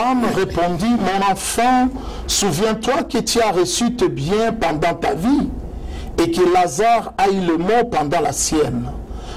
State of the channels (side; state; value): both; identical; correlation 1.00